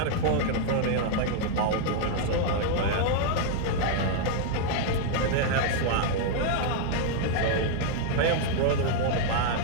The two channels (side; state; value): both; different; correlation 0.00